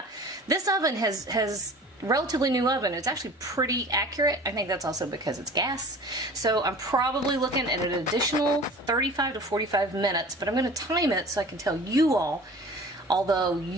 This oven has relatively new oven. It's actually pretty accurate. I think that's also because it's gas. So I'm probably looking at an additional 35 to 45 minutes, but I'm going to time it so I can tell you all, although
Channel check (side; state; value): both; normal; correlation 0.42